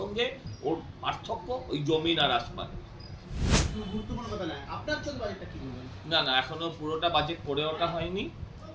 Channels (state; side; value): identical; both; correlation 1.00